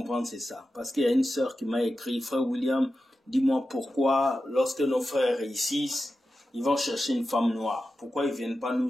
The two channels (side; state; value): both; normal; correlation 0.92